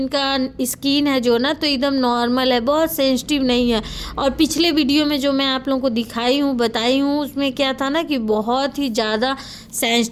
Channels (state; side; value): identical; both; correlation 1.00